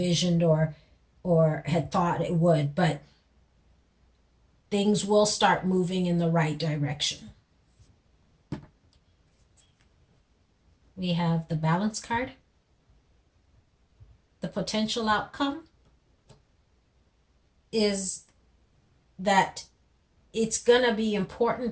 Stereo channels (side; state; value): both; identical; correlation 1.00